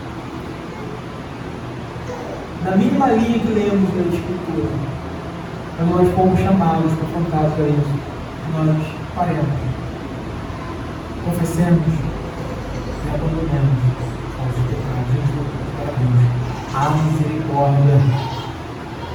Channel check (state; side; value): identical; both; correlation 1.00